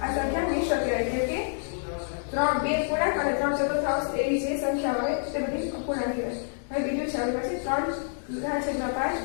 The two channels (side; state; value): right; silent; digital silence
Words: આ સંખ્યા મિશ્ર કહેવાય, કેમ કે બે પૂર્ણાંક અને 3 ચતુર્થાંશ એવી જે સંખ્યાઓ આવે તે બધી અપૂર્ણાંક કહેવાય. હવે બીજું છે આપણી પાસે 3/5